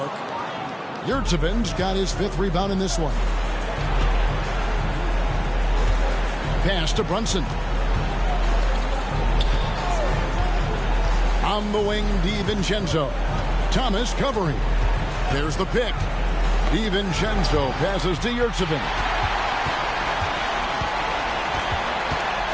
Yurtseven's got his 5th rebound in this one. Pass to Brunson. On the wing, DiVincenzo. Thomas covering. There's the pick. DiVincenzo passes to Yurtseven.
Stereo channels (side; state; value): both; identical; correlation 1.00